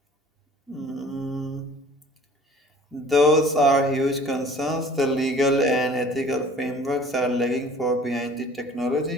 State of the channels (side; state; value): both; normal; correlation 0.50